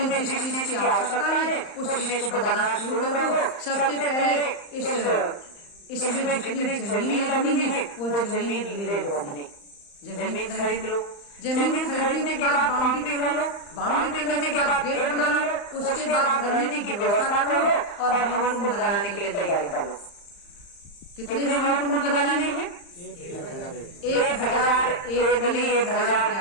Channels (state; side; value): late; right; 35 ms